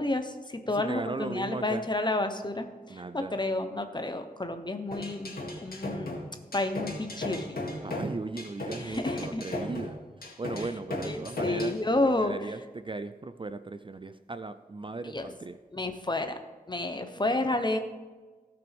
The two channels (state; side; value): normal; both; correlation 0.62